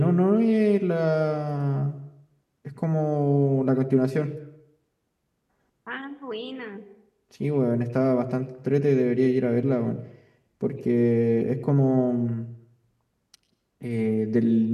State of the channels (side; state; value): both; identical; correlation 1.00